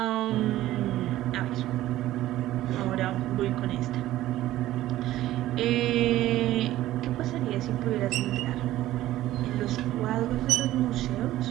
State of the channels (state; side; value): quieter; left; 14.8 dB